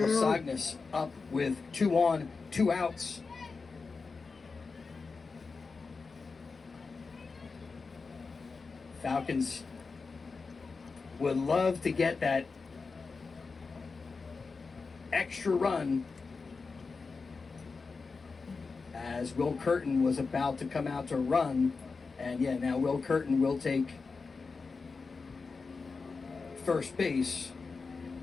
Sognas up with 2 on, 2 outs. Falcons would love to get that extra run as Will Curtin was about to come out to run. And yeah, now Will Curtin will take first base.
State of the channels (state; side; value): quieter; right; 4.5 dB